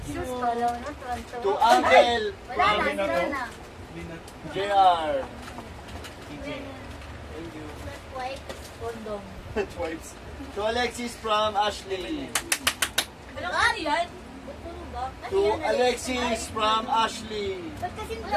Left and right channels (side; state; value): both; identical; correlation 1.00